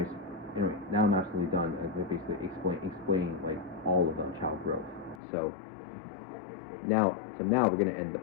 now I'm absolutely done basically explaining like all of child growth. So now we're gonna end the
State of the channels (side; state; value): right; drops out; at 5.2 s